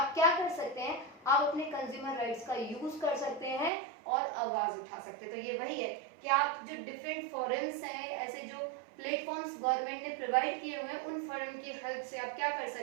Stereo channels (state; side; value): drops out; left; at 3.7 s